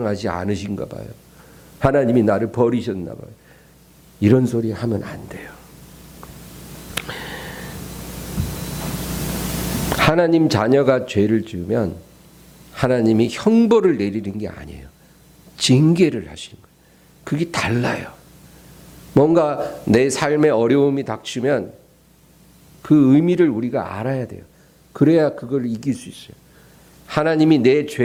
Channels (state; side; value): identical; both; correlation 1.00